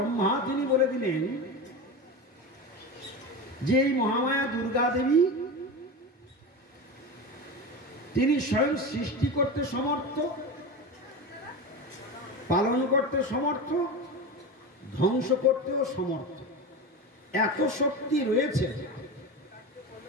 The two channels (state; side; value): normal; both; correlation 0.24